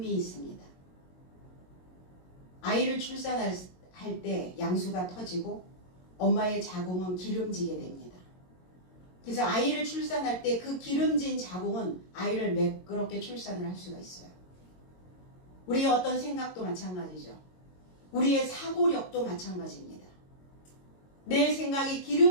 있습니다. 아이를 출산할 때 양수가 터지고 엄마의 자궁은 기름지게 됩니다. 그래서 아이를 출산할 때 그 기름진 자궁은 아이를 매끄럽게 출산을 할 수가 있어요. 우리의 어떤 생각도 마찬가지죠. 우리의 사고력도 마찬가지입니다. 내 생각이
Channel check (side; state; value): right; late; 22 ms